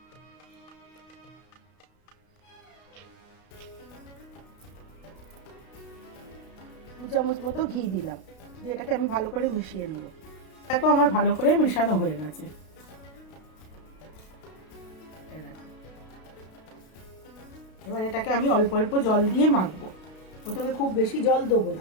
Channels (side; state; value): right; late; 32 ms